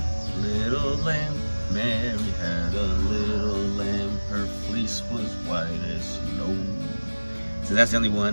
Mary had a little lamb. Her fleece was white as snow. So that's the only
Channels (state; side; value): inverted; both; correlation -1.00